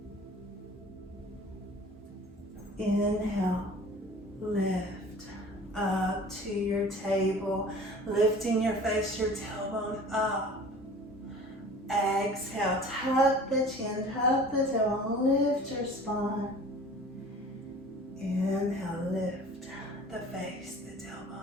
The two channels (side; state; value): both; normal; correlation 0.44